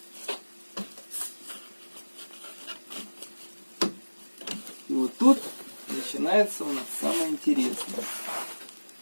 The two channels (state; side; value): inverted; both; correlation -1.00